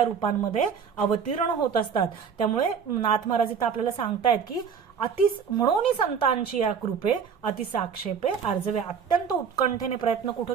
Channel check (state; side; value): quieter; left; 6.8 dB